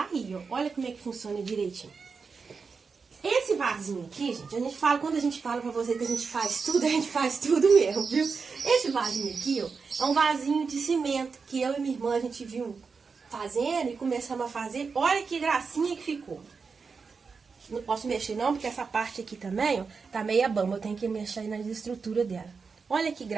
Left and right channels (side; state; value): left; quieter; 5.1 dB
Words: aí, ó. Olha como é que funciona direitinho. Esse vasinho aqui, gente, quando a gente fala pra você que a gente faz tudo mesmo, viu? Esse vasinho aqui, ó, é um vasinho de cimento que eu e minha irmã, a gente viu fazendo e começamos a fazer. Olha que gracinha que ficou. Não posso mexer não, porque essa parte aqui também, ó, tá meia bamba. Eu tenho que mexer aí na estrutura dela. Olha que